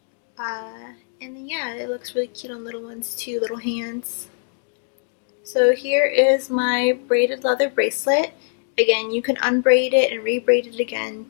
And then yeah, it looks really cute on little ones too, little hands. So here is my braided leather bracelet. Again, you can unbraid it and rebraid it again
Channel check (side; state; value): right; silent; digital silence